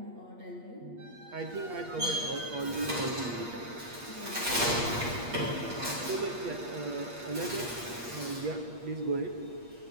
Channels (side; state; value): left; late; 8.4 ms